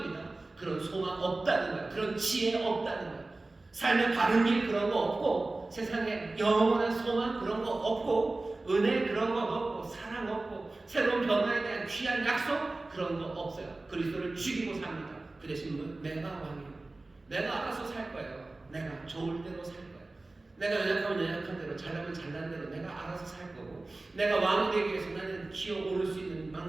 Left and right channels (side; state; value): left; quieter; 3.1 dB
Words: 그런 소망 없다는 거예요. 그런 지혜 없다는 거예요. 삶의 바른 길 그런 거 없고 세상에 영원한 소망 그런 거 없고 은혜 그런 거 없고 사랑 없고 새로운 변화에 대한 귀한 약속 그런 거 없어요. 그리스도를 죽이고 삽니다. 그 대신 내가 왕이에요. 내가 알아서 살 거예요. 내가 좋을 대로 살 거예요. 내가 연약하면 연약한 대로 잘나면 잘난 대로 내가 알아서 살 거고 내가 왕이 되기 위해서 나는 기어오를 수 있는